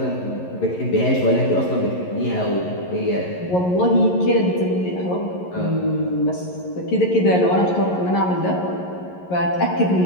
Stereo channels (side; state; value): right; late; 11 ms